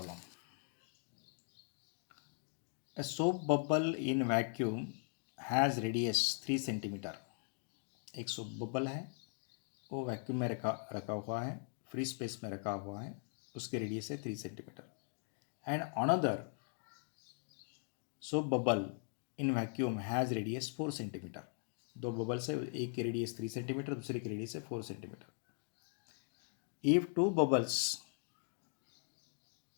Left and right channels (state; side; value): silent; right; 51 dB below the other